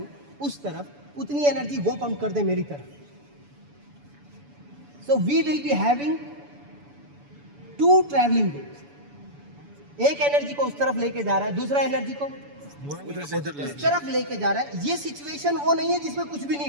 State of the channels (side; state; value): left; late; 7.0 ms